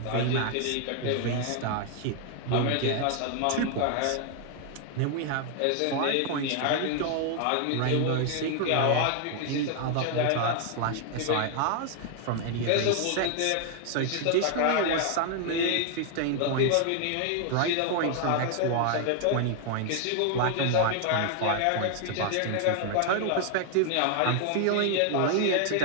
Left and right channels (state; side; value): different; both; correlation 0.00